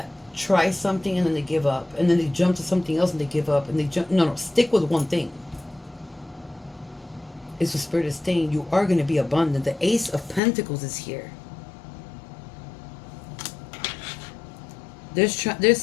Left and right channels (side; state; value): right; drops out; at 10.4 s